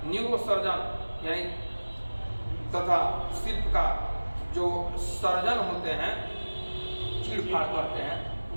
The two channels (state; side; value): inverted; both; correlation -1.00